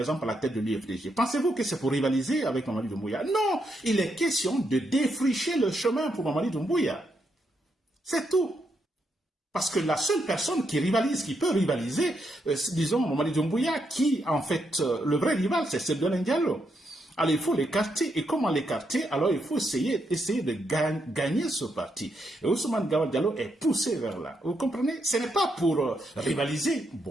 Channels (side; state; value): both; normal; correlation 0.80